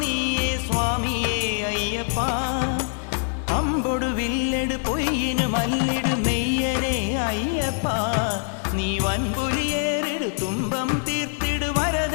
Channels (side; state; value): right; silent; digital silence